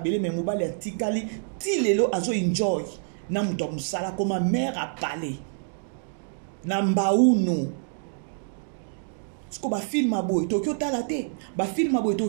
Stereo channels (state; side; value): silent; left; 60 dB below the other